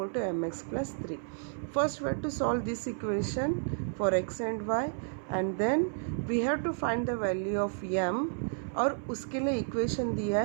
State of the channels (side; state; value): left; silent; 57 dB below the other